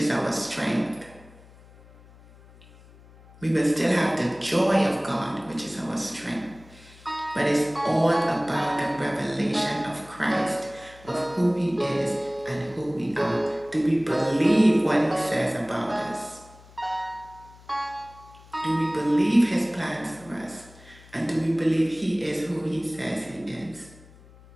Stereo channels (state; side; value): noise; left; hum, 23 dB below the sound